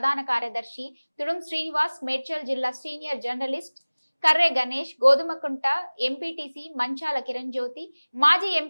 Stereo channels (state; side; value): inverted; both; correlation -1.00